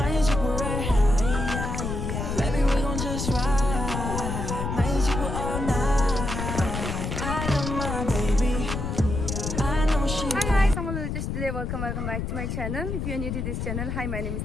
Welcome back to my channel. If you are new to this channel, hi, my name is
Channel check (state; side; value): noise; left; rumble, 3 dB below the sound